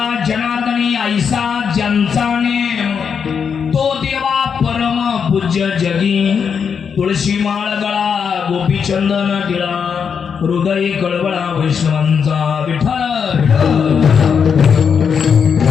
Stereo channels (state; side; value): quieter; right; 6.7 dB